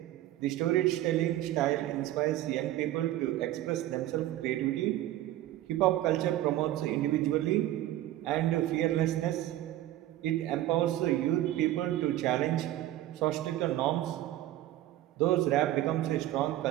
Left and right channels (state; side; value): quieter; left; 14.2 dB